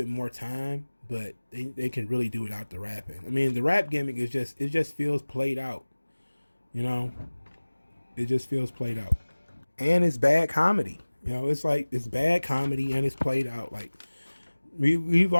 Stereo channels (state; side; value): inverted; both; correlation -1.00